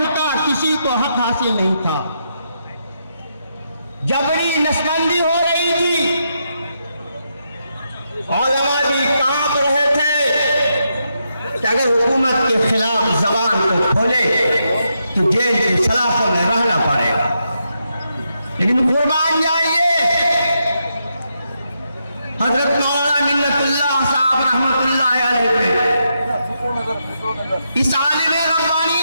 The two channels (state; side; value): inverted; both; correlation -0.82